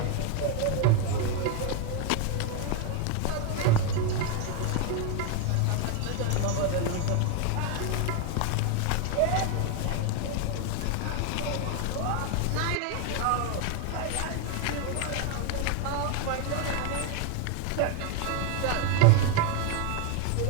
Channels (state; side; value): different; both; correlation 0.01